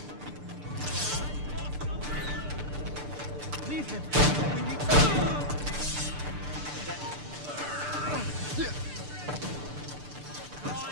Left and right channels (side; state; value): left; late; 6.8 ms